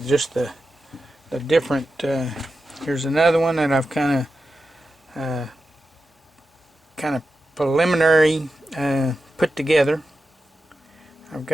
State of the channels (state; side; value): normal; both; correlation 0.91